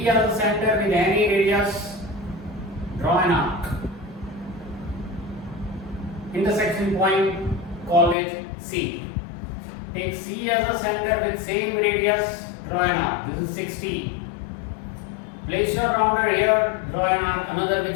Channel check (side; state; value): right; drops out; at 8.2 s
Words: as the center with any radius. Draw an arc. Intersection point, call it C. Take C as the center with same radius. Draw an arc. This is 60. Place your rounder here, draw an arc, another